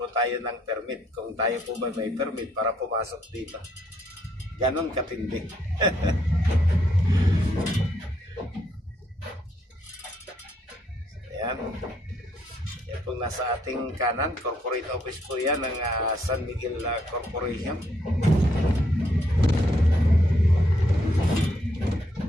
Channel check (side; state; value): both; normal; correlation 0.73